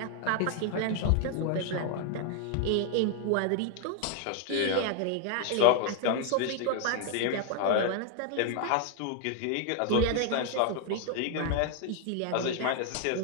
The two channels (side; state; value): both; different; correlation 0.00